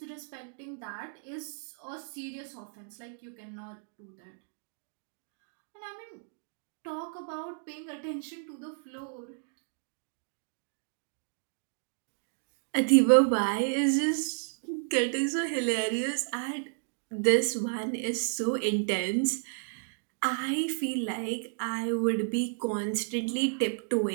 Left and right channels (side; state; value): left; silent; digital silence